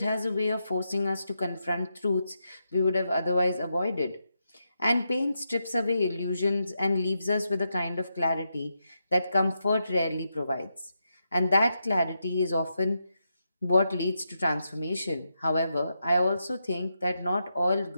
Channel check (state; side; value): inverted; both; correlation -0.84